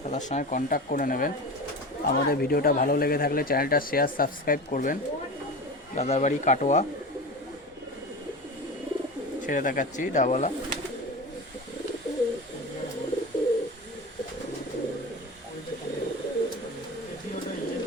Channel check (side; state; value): both; normal; correlation 0.30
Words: দাদার সঙ্গে কন্ট্যাক্ট করে নেবেন। আমাদের ভিডিওটা ভালো লেগে থাকলে চ্যানেলটা শেয়ার সাবস্ক্রাইব করবেন। দাদার বাড়ি কাটোয়া। ছেড়ে দেখাচ্ছি ডাবওয়ালা।